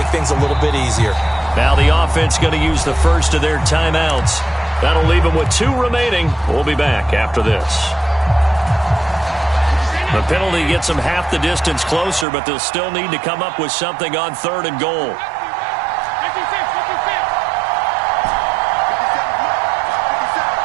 things a little bit easier. Now the offense going to use the first of their timeouts. That'll leave them with 2 remaining. We'll be back after this. The penalty gets them half the distance closer, but they'll still need to come up with something on 3rd and goal.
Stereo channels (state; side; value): drops out; left; at 12.2 s